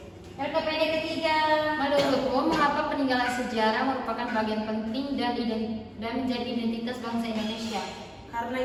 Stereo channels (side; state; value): both; identical; correlation 1.00